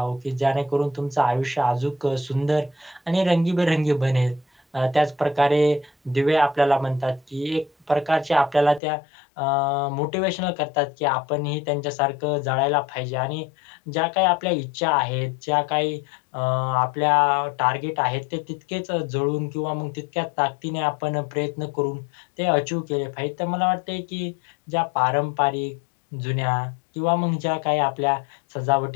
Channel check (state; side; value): drops out; right; at 8.8 s